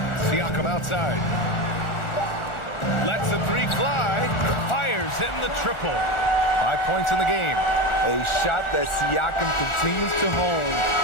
Siakam outside. Lets the three fly. Fires in the triple. 5 points in the game. A shot that Siakam continues to hone,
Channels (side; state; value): right; late; 1.4 ms